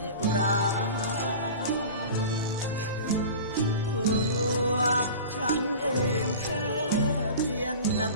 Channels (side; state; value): both; inverted; correlation -0.36